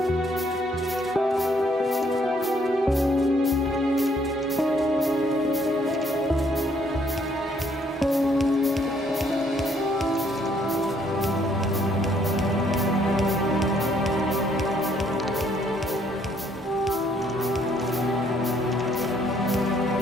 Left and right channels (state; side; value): normal; both; correlation 0.67